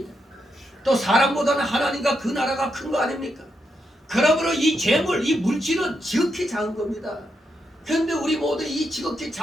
또 사람보다는 하나님과 그 나라가 큰 거 아닙니까? 그러므로 이 재물, 이 물질은 지극히 작은 겁니다. 그런데 우리 모두 이 지극히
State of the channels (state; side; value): normal; both; correlation 0.83